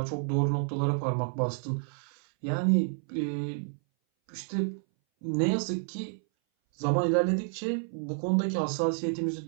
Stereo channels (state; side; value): silent; left; 58 dB below the other